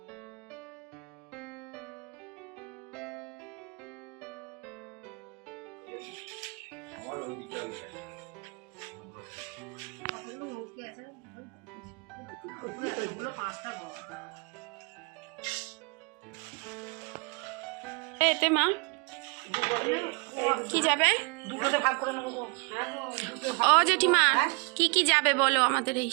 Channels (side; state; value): left; quieter; 32.3 dB